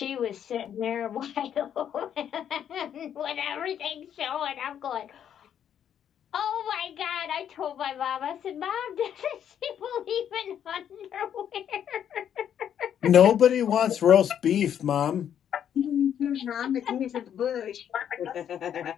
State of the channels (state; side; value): quieter; right; 9.3 dB